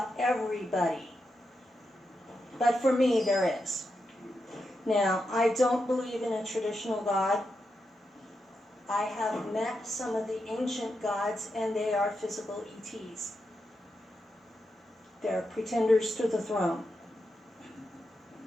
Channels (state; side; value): normal; both; correlation 0.86